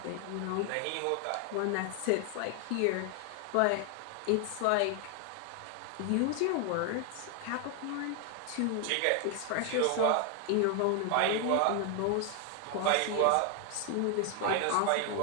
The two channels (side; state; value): both; different; correlation 0.00